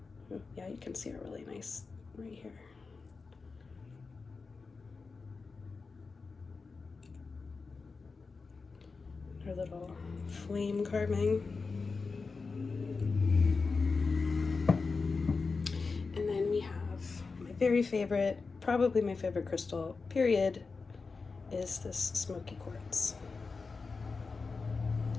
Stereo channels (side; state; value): right; quieter; 4.4 dB